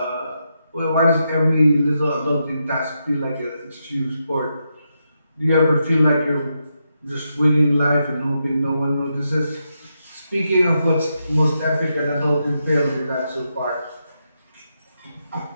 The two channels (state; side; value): inverted; both; correlation -0.84